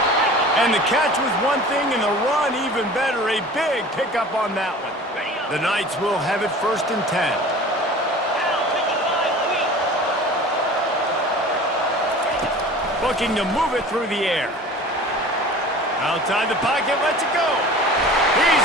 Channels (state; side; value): normal; both; correlation 0.41